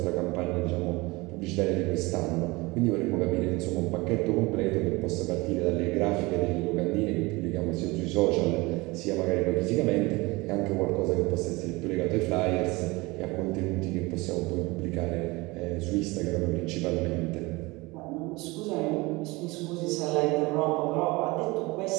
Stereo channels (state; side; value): quieter; left; 23.1 dB